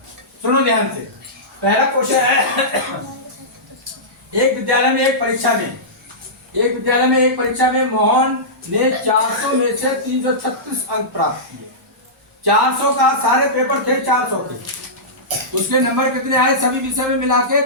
सुनो ध्यान से। पहला क्वेश्चन है एक विद्यालय में एक परीक्षा में मोहन ने 400 में से 336 अंक प्राप्त किए। 400 का सारे पेपर थे 400 के, उसके नंबर कितने आए सभी विषय में मिला के?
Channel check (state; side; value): normal; both; correlation -0.16